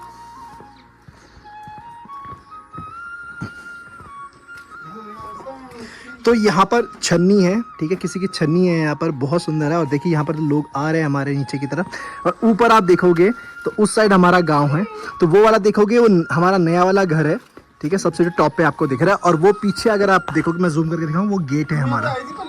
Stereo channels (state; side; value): identical; both; correlation 1.00